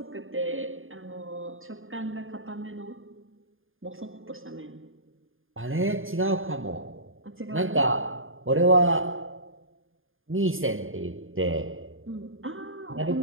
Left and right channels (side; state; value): left; late; 0.59 ms